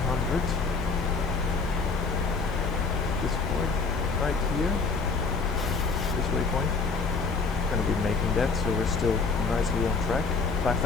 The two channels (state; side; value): quieter; right; 4.5 dB